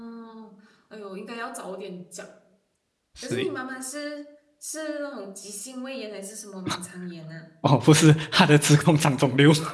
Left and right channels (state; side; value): identical; both; correlation 1.00